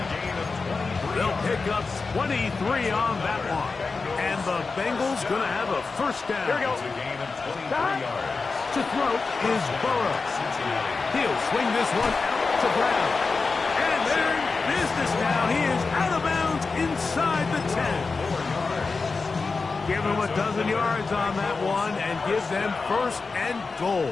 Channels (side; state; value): right; quieter; 4.3 dB